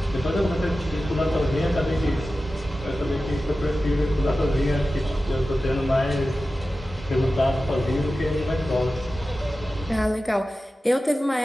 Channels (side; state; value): both; normal; correlation 0.94